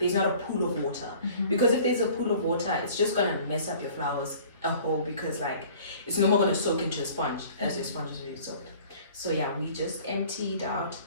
a pool of water, because if there's a pool of water, it's just gonna mess up your flowers a whole, because like it's no more gonna soak into a sponge as your sponge is already soaked. So yeah, we just emptied out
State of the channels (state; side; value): inverted; both; correlation -0.49